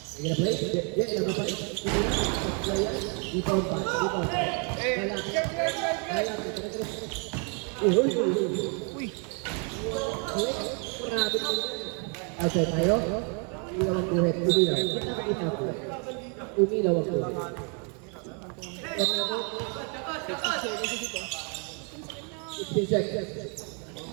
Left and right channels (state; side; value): quieter; left; 38.0 dB